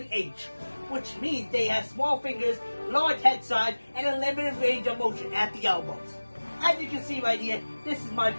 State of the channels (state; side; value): inverted; both; correlation -1.00